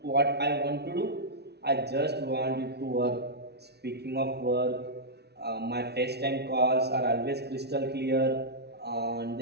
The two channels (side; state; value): left; late; 0.49 ms